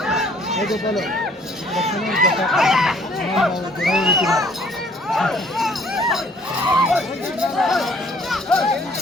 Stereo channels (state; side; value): normal; both; correlation 0.59